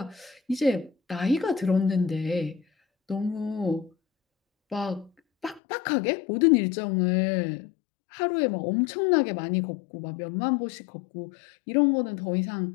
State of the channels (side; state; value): right; drops out; at 5.6 s